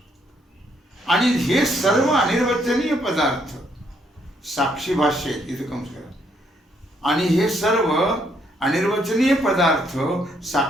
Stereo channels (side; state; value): both; normal; correlation 0.71